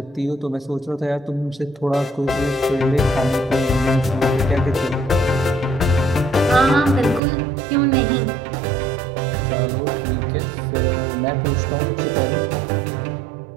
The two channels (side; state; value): left; drops out; at 7.2 s